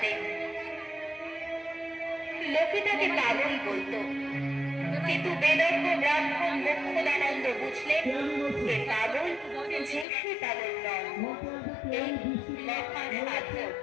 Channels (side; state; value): right; drops out; at 10.1 s